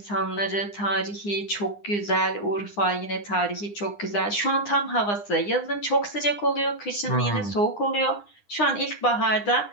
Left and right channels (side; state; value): right; late; 9.8 ms